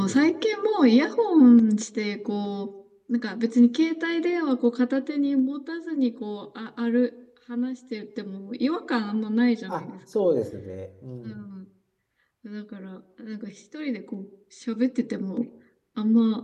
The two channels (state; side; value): identical; both; correlation 1.00